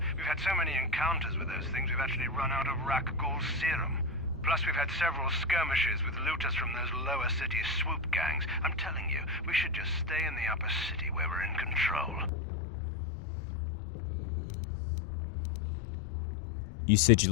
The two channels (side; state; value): right; drops out; at 12.3 s